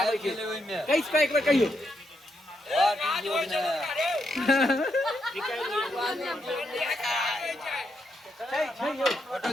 छै। कैस का एक बार कहियो। छै यो फोटो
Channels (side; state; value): both; normal; correlation 0.80